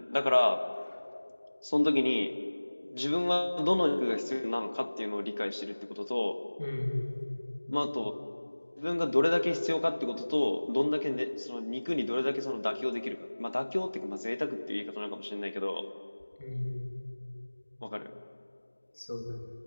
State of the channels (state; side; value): inverted; both; correlation -1.00